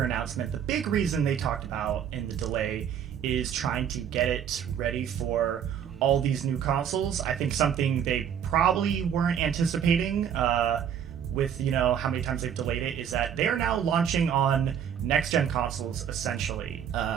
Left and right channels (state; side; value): quieter; left; 8.7 dB